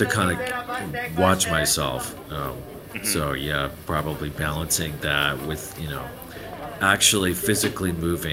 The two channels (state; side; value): identical; both; correlation 1.00